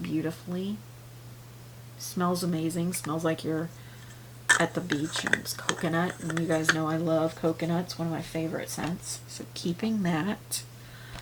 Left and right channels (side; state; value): both; identical; correlation 1.00